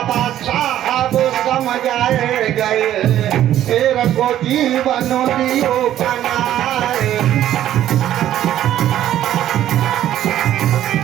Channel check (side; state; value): left; quieter; 12.0 dB